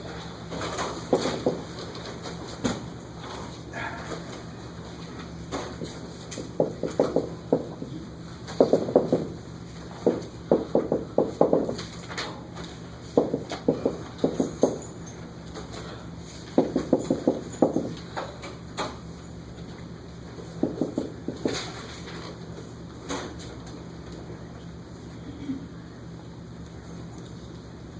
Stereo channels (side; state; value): both; identical; correlation 1.00